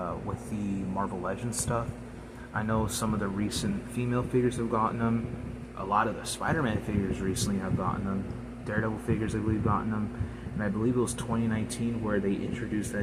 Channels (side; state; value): both; identical; correlation 1.00